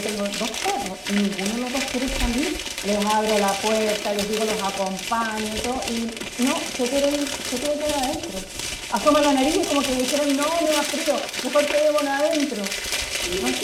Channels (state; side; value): identical; both; correlation 1.00